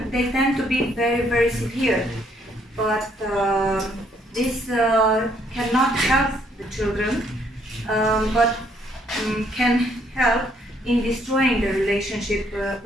they tend to be very, very severe. But this cannot help the children, but can help in destroying the relationship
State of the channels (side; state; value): both; normal; correlation 0.68